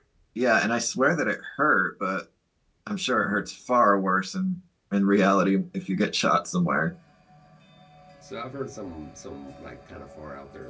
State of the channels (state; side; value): identical; both; correlation 1.00